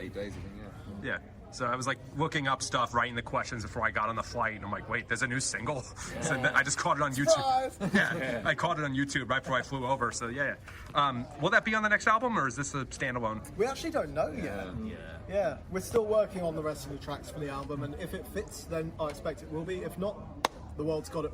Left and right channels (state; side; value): identical; both; correlation 1.00